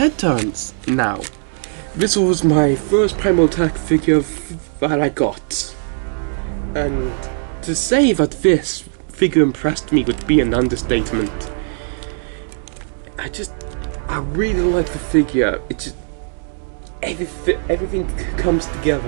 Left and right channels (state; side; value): silent; left; digital silence